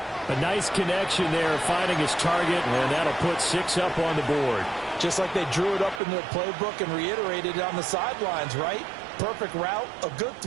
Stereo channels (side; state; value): left; drops out; at 6.0 s